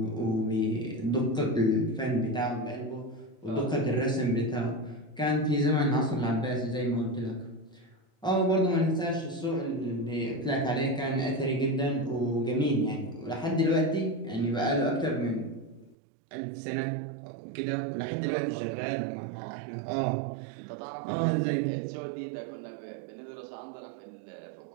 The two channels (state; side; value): drops out; left; at 16.0 s